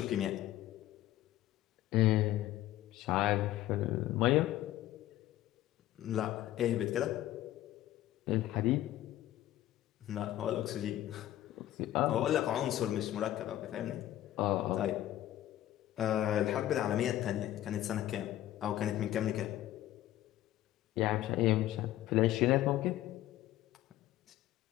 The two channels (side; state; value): right; quieter; 13.9 dB